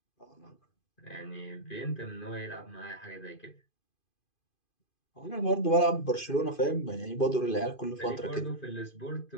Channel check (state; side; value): late; right; 2.5 ms